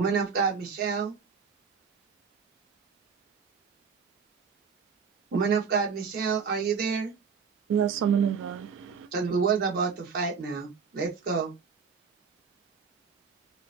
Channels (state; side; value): quieter; left; 5.9 dB